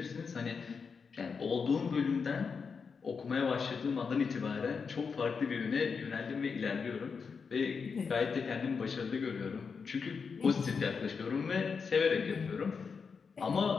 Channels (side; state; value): right; quieter; 5.5 dB